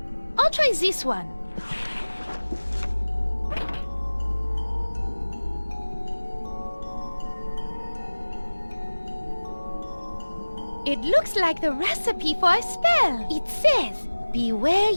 I'll try this one. It looks like the recipe for a spell. It says, "Beware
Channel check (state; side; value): inverted; both; correlation -1.00